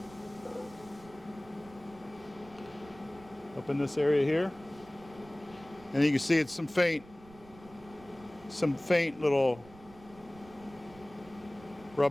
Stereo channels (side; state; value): right; noise; rumble, 21 dB below the sound